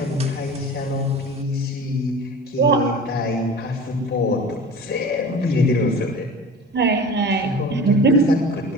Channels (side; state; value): both; normal; correlation 0.37